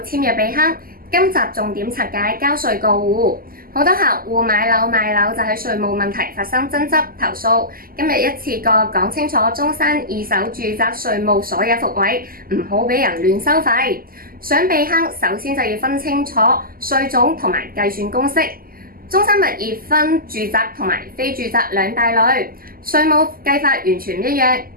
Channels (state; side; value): late; left; 0.42 ms